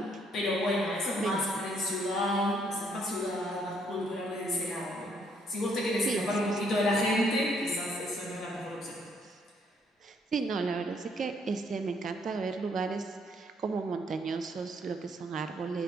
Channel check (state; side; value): normal; both; correlation 0.69